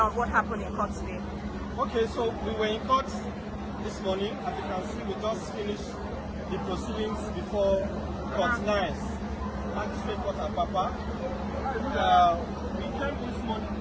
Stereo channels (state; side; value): identical; both; correlation 1.00